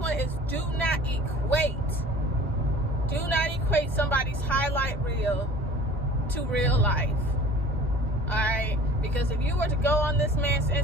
is do not equate somebody's highlight reel to real life. Alright? Because if you were to go on this man's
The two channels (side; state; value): both; normal; correlation 0.45